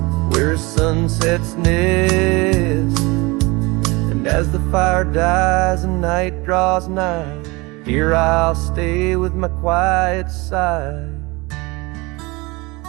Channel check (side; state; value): left; quieter; 24.6 dB